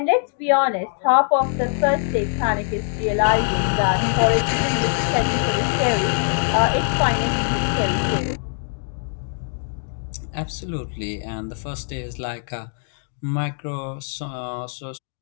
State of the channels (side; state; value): right; silent; 64 dB below the other